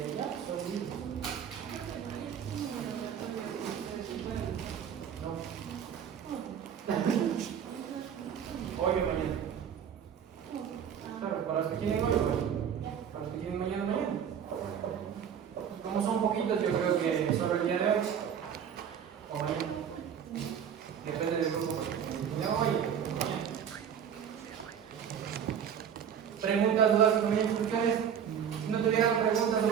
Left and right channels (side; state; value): left; quieter; 8.3 dB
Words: ya, son listos. No. Hoy o mañana. Claro, para los que quieren hoy, para los que quieren mañana. Preguntas, dudas, comentarios, cuestiones. Si no tuvieran preguntas o